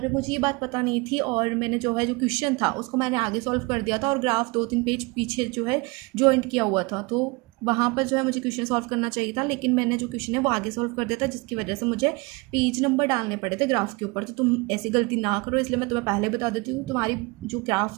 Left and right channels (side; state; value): left; quieter; 26.7 dB